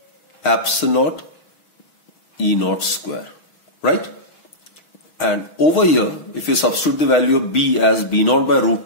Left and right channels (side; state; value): right; late; 6.1 ms